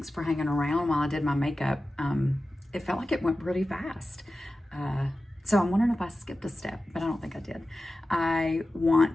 for hanging around while I did my makeup. It felt like it went pretty fast. So I'm wondering if I skipped a step, but I don't think I did.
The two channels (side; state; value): both; normal; correlation 0.94